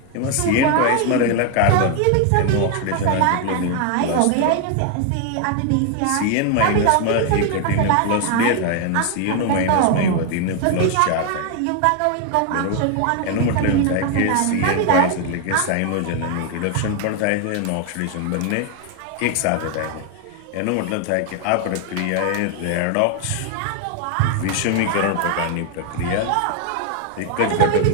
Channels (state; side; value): different; both; correlation 0.00